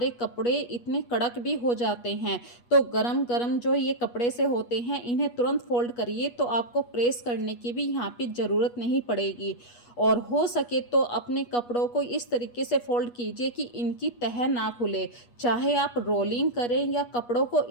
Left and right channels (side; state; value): right; late; 8.3 ms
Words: कपड़े इतने कड़क भी हो जाते हैं। तो गरम गरम जो ये कपड़े से होते हैं, इन्हें तुरंत फोल्ड करिए, तो आपको प्रेस करने की भी यहाँ पे ज़रूरत नहीं पड़ेगी। और हो सके तो अपने कपड़ों को इस तरीके से फोल्ड कीजिए कि इनकी तह ना खुले, चाहे आप रोलिंग करें या कपड़ों को